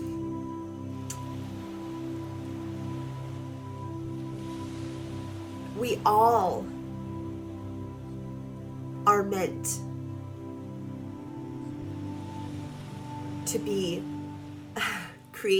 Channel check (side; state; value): both; identical; correlation 1.00